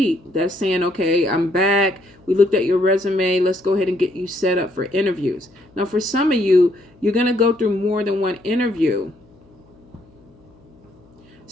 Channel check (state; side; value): noise; left; hum, 29 dB below the sound